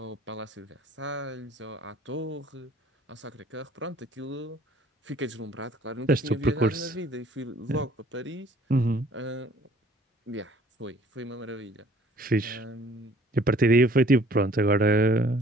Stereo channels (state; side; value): normal; both; correlation 0.56